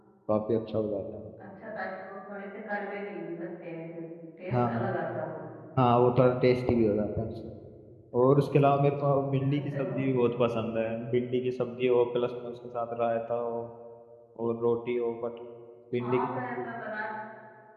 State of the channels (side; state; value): both; identical; correlation 1.00